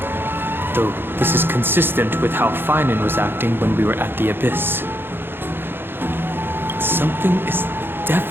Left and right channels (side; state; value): left; late; 0.10 ms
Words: Though this is consistent with how Finan was acting when we were at the Abyss. Something is